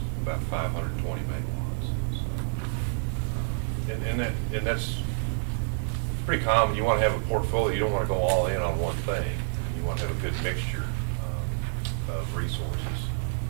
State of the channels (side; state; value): left; silent; digital silence